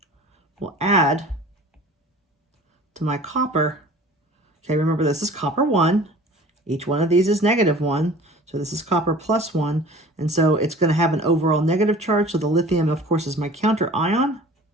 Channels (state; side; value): normal; both; correlation 0.45